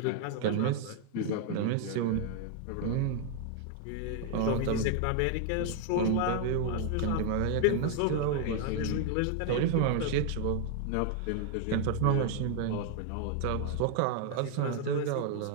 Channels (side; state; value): both; different; correlation 0.00